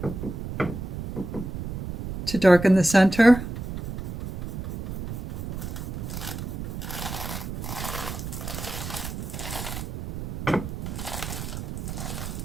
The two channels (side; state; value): right; noise; rumble, 6 dB below the sound